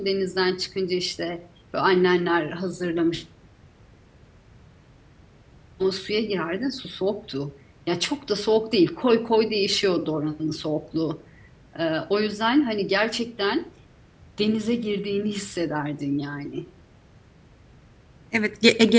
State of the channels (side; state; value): both; identical; correlation 1.00